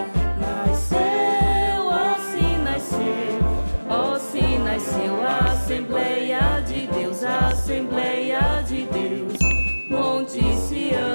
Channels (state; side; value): inverted; both; correlation -1.00